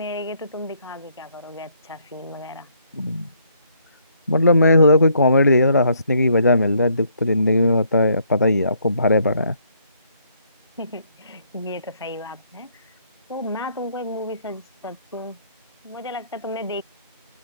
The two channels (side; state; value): both; inverted; correlation -0.69